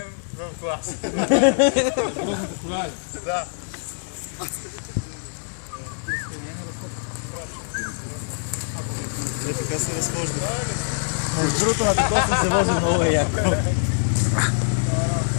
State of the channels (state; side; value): silent; right; 63 dB below the other